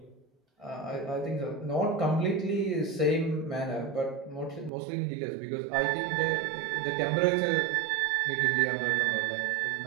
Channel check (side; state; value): left; drops out; at 4.7 s